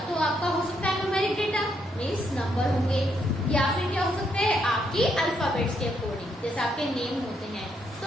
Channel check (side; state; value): both; normal; correlation 0.76